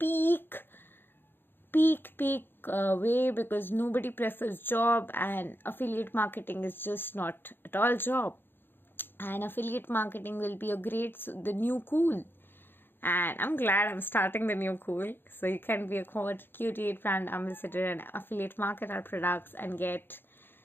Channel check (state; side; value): late; right; 0.10 ms